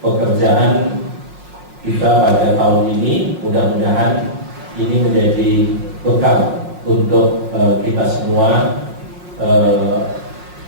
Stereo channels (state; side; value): late; left; 5.5 ms